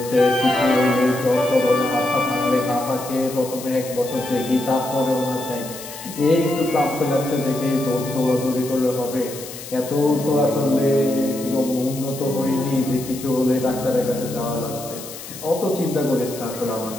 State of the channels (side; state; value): left; noise; hiss, 13 dB below the sound